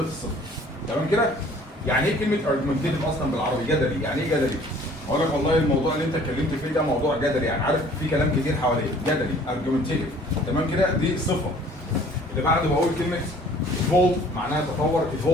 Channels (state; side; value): normal; both; correlation 0.53